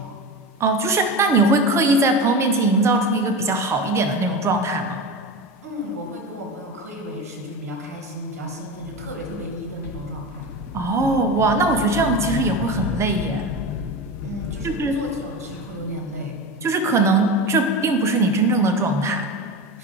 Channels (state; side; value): normal; both; correlation 0.25